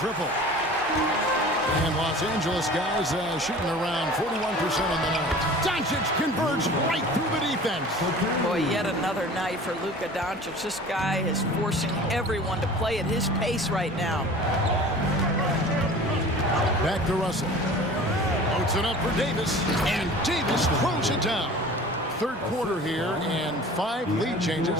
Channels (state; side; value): normal; both; correlation 0.42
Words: And Los Angeles guys shooting around 41% on the night. Doncic converts right through the defense. Boy, yet another night for Luka Doncic. This guy is forcing everyone to play at his pace right now. Back to Russell. Loads it up for Davis. And Davis throws it down. Third quarter here and 5 lead